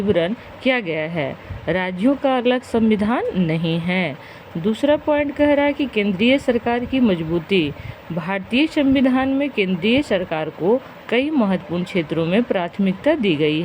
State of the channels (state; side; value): identical; both; correlation 1.00